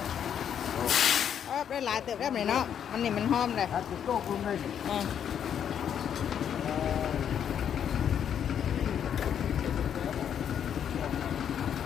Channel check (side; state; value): right; quieter; 8.8 dB